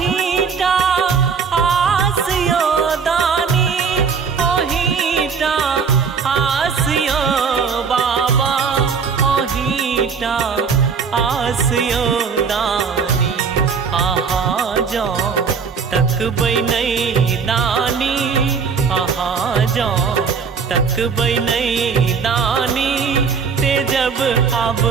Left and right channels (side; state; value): left; quieter; 5.9 dB